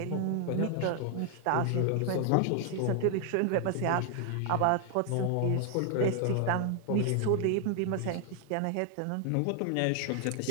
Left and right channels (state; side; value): different; both; correlation 0.00